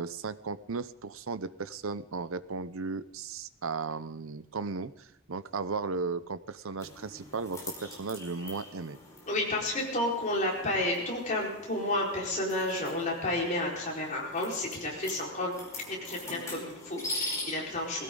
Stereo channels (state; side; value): normal; both; correlation -0.02